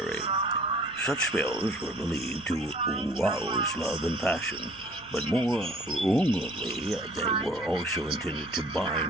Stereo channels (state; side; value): noise; right; rumble, 24 dB below the sound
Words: Such spells were believed to rouse love and passion, but more wrongly, they were also intended to